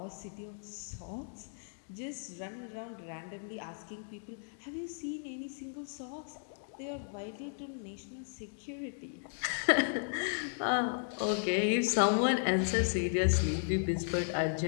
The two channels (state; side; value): silent; right; digital silence